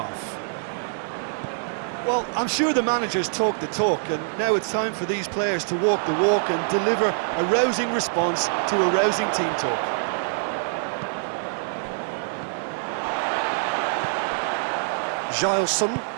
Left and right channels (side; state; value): left; silent; 55 dB below the other